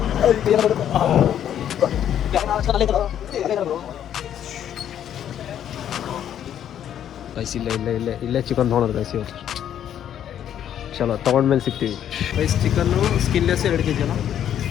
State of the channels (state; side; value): quieter; right; 10.1 dB